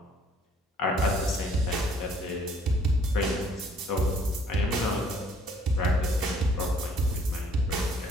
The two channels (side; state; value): both; normal; correlation 0.61